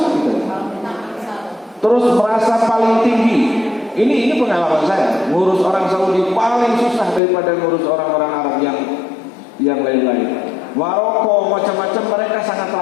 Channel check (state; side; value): drops out; right; at 7.2 s